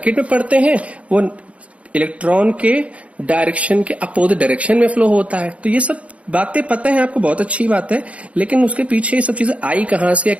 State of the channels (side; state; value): left; late; 0.064 ms